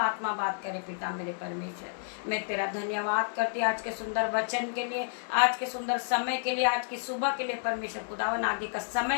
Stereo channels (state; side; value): silent; right; digital silence